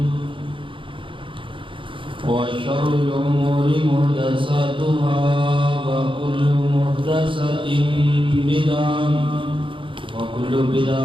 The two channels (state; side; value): late; left; 0.25 ms